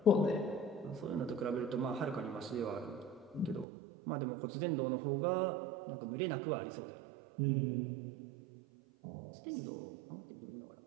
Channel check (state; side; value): drops out; left; at 3.7 s